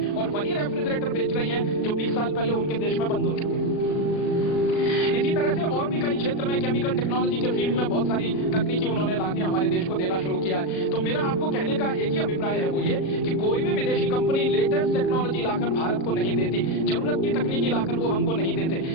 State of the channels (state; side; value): late; right; 37 ms